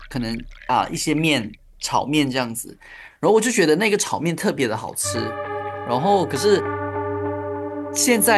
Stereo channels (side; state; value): both; identical; correlation 1.00